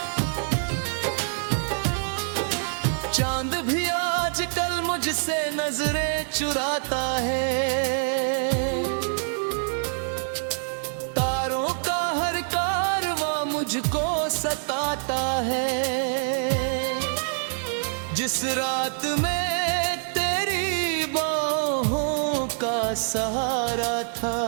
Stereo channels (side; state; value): left; silent; digital silence